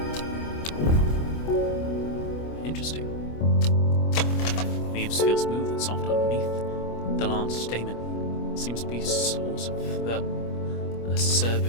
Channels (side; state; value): right; late; 25 ms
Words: interesting. Leaves feel smooth and soft underneath. The large stamen seems to be a source of the